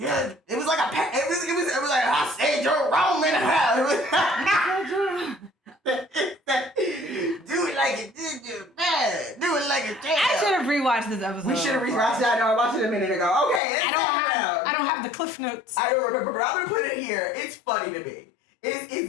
it was like it was like, I said Jerome in the house. Do it like it did you, man. Do it like it did. I should have rewatched this episode. We should have rewatched that. No, I watched it a minute ago. Okay, I don't have the cliff notes. I don't remember, but I'm gonna put it here. It's funny to me.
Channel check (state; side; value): drops out; right; at 13.6 s